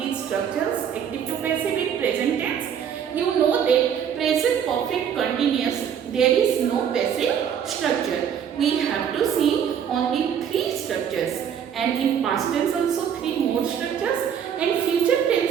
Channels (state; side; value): quieter; left; 8.4 dB